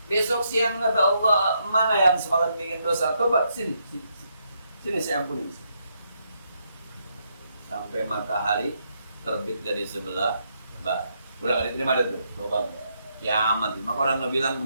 Besok siang kata Allah, mana yang semalam bikin dosa? Tobat, sini saya ampuni. Sampai matahari terbit dari sebelah barat. Udah gak diterima ada tuh tobat. Kiamat. Maka orang bilang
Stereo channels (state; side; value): inverted; both; correlation -0.77